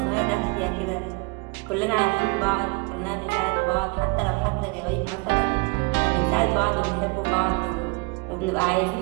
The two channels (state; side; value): quieter; left; 28.3 dB